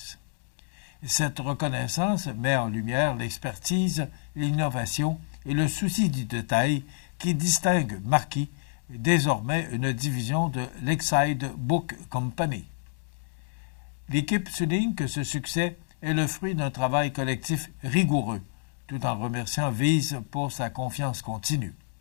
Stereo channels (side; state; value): right; silent; 59 dB below the other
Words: Cette reconnaissance met en lumière l'expertise, l'innovation et le souci du détail qui distinguent Marquis, désormais une division de Lakeside Book Company. L'équipe souligne que ce succès est le fruit d'un travail collectif rigoureux, tout en remerciant Vise pour sa confiance continue.